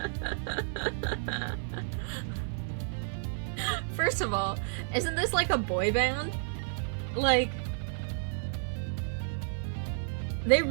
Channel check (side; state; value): left; silent; 57 dB below the other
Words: First of all, isn't this like a boy band? Like, they